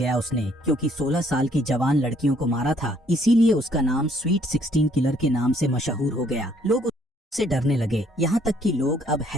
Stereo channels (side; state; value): both; normal; correlation 0.65